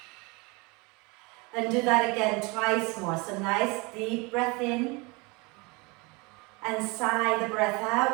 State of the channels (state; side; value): quieter; left; 27.2 dB